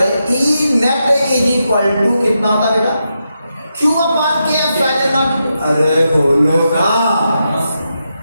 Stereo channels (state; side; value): inverted; both; correlation -0.85